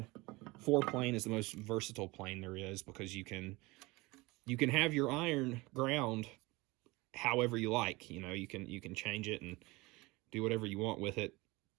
foreplane is the most versatile plane there is, because you can have your iron ground however you like. You can change it and do whatever you want with it.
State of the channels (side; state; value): left; quieter; 22.9 dB